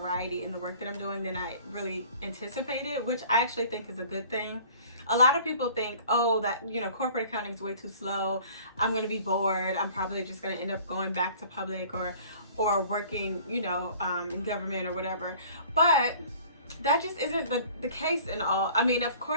in the work that I'm doing than I really anticipated, which I actually think is a good thing. A lot of people think, oh, that, corporate accounting is way too slow. I'm going to be bored. I'm probably just going to end up going back to public or working, in government or whatever. But that just isn't the case in all. I mean, of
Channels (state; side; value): inverted; both; correlation -0.49